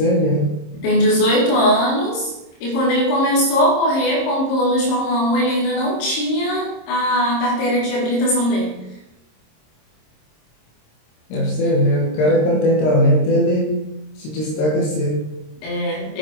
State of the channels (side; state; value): right; late; 26 ms